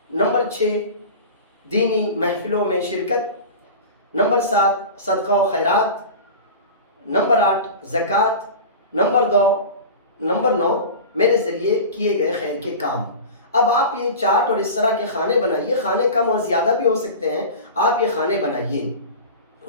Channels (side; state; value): both; inverted; correlation -0.32